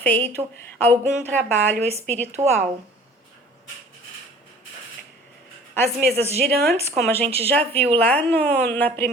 algum trabalho espiritual. As mesas girantes, como a gente já viu lá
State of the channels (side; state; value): both; normal; correlation 0.48